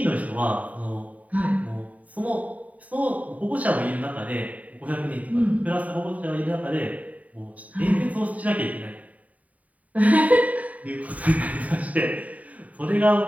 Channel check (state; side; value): late; left; 0.070 ms